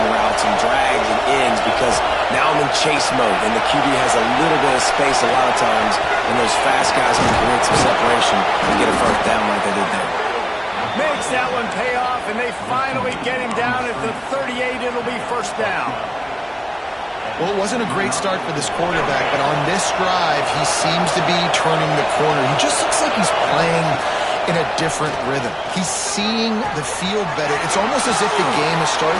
routes and drags and ends because now I'm in chase mode, and the QB has a little bit of space a lot of times, and those fast guys can create some separation and get a first down like they did there. Makes that one pay off, and they finally get him down at the 38. It'll be first down. Well, it wasn't a great start for this quarterback, but on this drive, he seems to be turning the corner. He just looks like he's playing in a different rhythm. He's seeing the field better. It's almost as if the game is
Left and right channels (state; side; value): identical; both; correlation 1.00